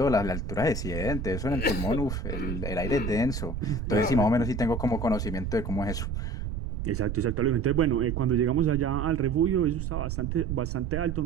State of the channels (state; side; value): noise; right; rumble, 4 dB below the sound